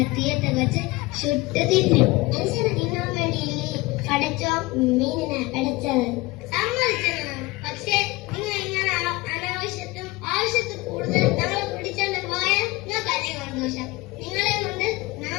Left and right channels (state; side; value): quieter; right; 21.7 dB